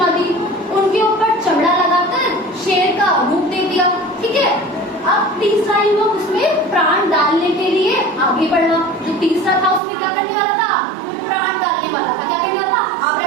दी। उनके ऊपर चमड़ा लगाकर शेर का रूप दे दिया, ठीक है। अब तीसरा युवक उसमें प्राण डालने के लिए आगे बढ़ा। जो तीसरा था उसमें क्या करने वाला था? प्राण डालने वाला था। क्या करने वाला था?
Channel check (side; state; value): left; drops out; at 9.8 s